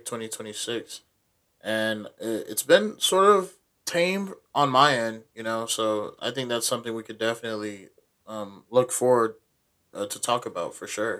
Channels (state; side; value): identical; both; correlation 1.00